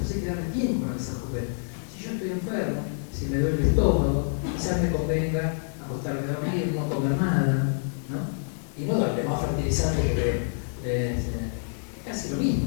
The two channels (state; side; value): silent; right; 60 dB below the other